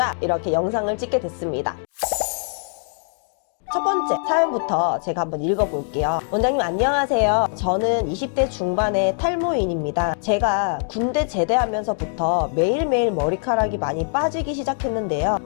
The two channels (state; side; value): silent; right; 63 dB below the other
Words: 이렇게 영상을 찍게 됐습니다. 첫 번째 사연부터 제가 한번 읽어볼게요. 원장님 안녕하세요. 저는 20대 중반의 탈모인입니다. 제가 군대 제대하면서부터 매일매일 머리카락이 많이 빠지기 시작했는데요.